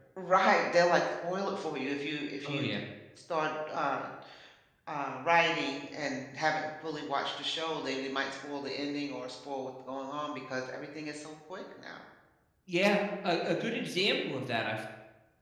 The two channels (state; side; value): identical; both; correlation 1.00